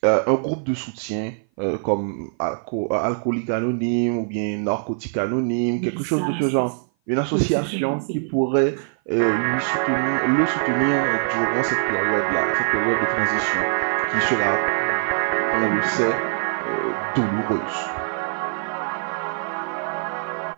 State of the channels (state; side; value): silent; left; 57 dB below the other